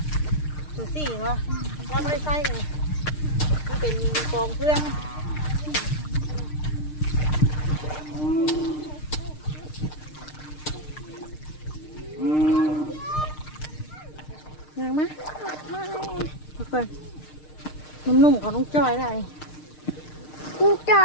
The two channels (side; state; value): right; late; 6.6 ms